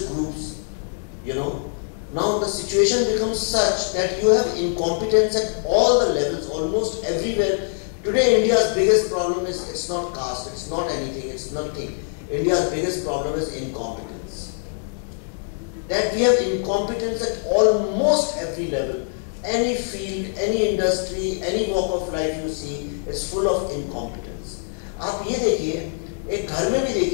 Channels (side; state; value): right; silent; digital silence